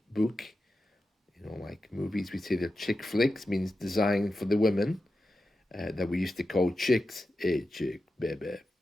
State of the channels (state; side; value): normal; both; correlation 0.91